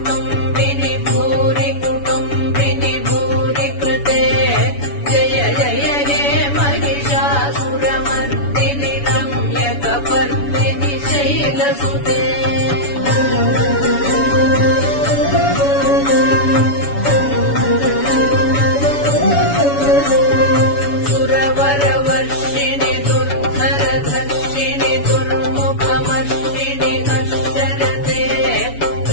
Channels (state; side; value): late; right; 7.1 ms